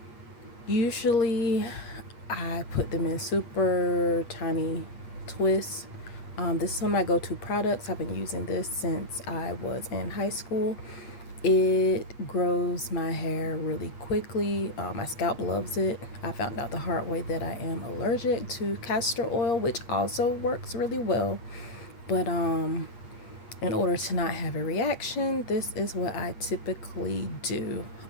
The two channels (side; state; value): right; late; 8.5 ms